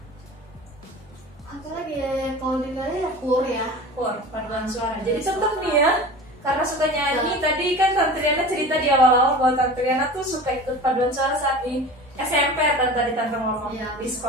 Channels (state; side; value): normal; both; correlation 0.36